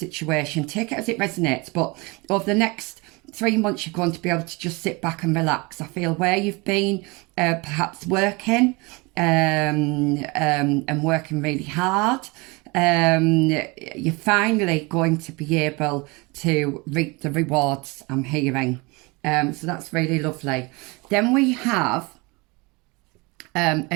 Take it as it resonates. But over the next 3 months, you're going to be able to just sit back and relax. I feel where you've been perhaps working and working really hard, you're finally going to be able to reap the rewards, I'm hearing. So that's really lovely. Then we have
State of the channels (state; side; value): quieter; left; 26.3 dB